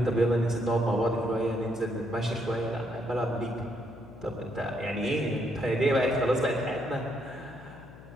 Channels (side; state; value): left; noise; hum, 18 dB below the sound